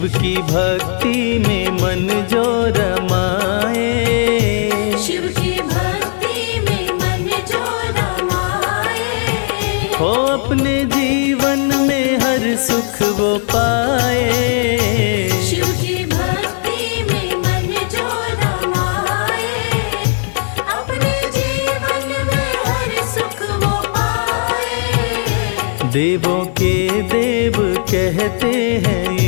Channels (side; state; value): right; silent; digital silence